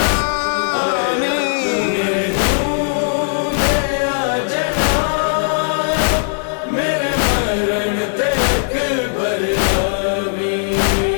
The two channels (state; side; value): silent; right; digital silence